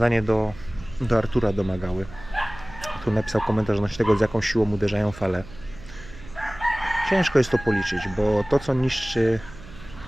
do Artura Domagały. Tu napisał komentarz odnośnie tego, z jaką siłą uderzają fale. Ciężko jest to policzyć, bo to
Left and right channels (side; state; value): right; noise; hum, 18 dB below the sound